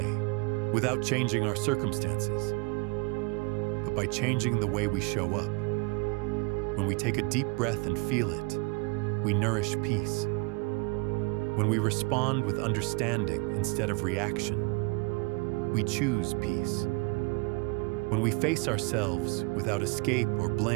without changing our circumstances, but by changing the way we show up. When we take a deep breath and feel it, we nourish peace. When we respond with understanding instead of reaction, we choose peace. When we face ourselves without escape or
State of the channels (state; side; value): quieter; left; 30.5 dB